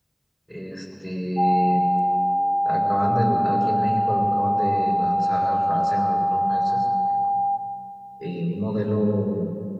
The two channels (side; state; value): both; identical; correlation 1.00